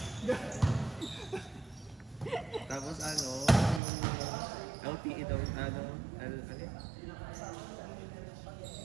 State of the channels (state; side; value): drops out; left; at 3.8 s